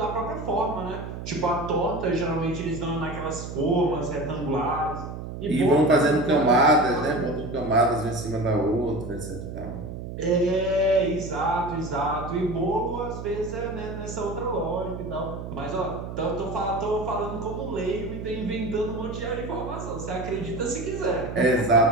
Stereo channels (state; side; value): noise; right; hum, 8 dB below the sound